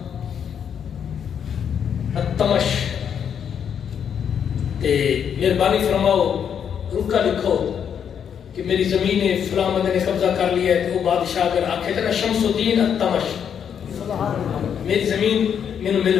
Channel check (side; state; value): right; quieter; 8.0 dB